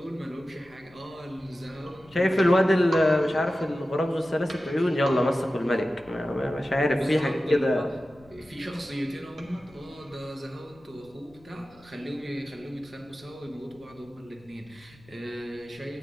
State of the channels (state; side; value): noise; left; rumble, 27 dB below the sound